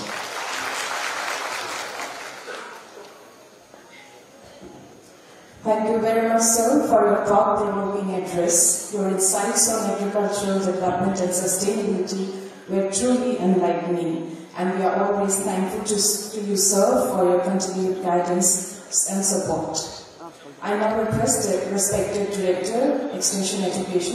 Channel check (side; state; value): both; identical; correlation 1.00